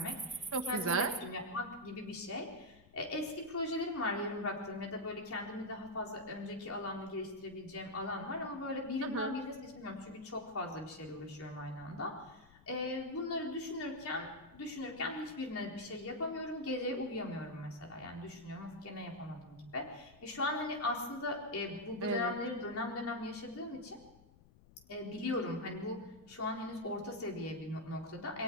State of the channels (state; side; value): noise; left; rumble, 23 dB below the sound